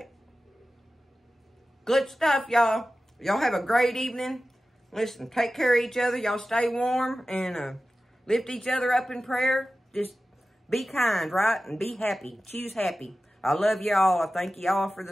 Good stuff, y'all. Y'all have a great evening. Listen, take care of each other. Y'all stay warm and lift each other up in prayer. Just be kind, right? And be happy. Choose happy. I love y'all. I thank y'all for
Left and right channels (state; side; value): normal; both; correlation 0.95